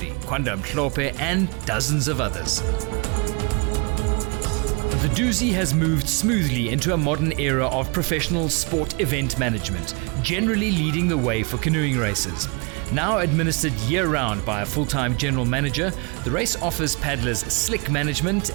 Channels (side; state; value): left; quieter; 31.9 dB